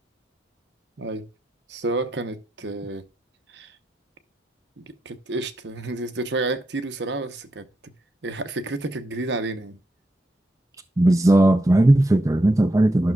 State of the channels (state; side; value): normal; both; correlation 0.85